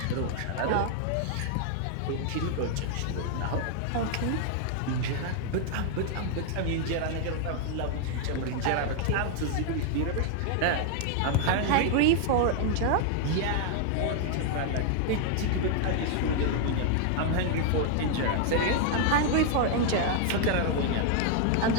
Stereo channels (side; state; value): both; different; correlation 0.00